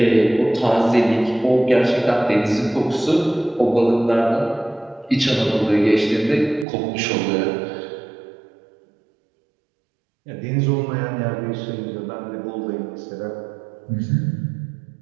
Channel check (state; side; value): drops out; left; at 6.7 s